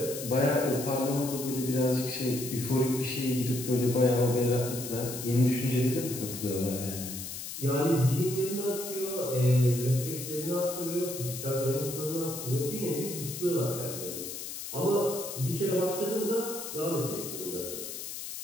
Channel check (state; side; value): noise; left; hiss, 8 dB below the sound